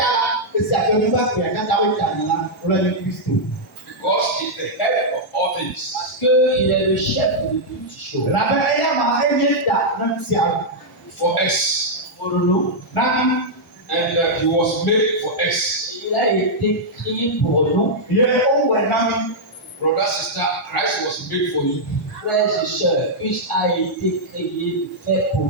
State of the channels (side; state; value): both; normal; correlation -0.06